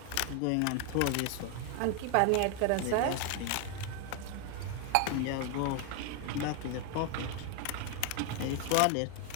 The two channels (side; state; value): both; different; correlation 0.01